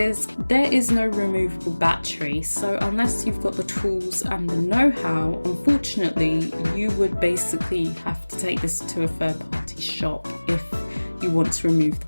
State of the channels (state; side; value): inverted; both; correlation -1.00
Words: there is no removable battery, so unless you've got the tools and the know-how, unfortunately you would basically have to take this to a third-party shop if you want to remove the